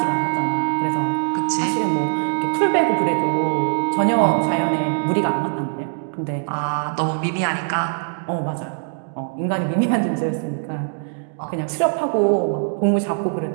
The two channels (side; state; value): left; silent; 63 dB below the other